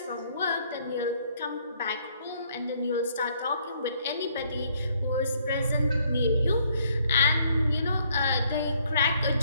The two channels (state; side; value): inverted; both; correlation -0.66